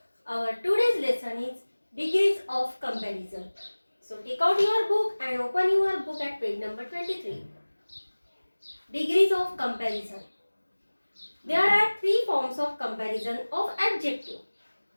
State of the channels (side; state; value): both; inverted; correlation -1.00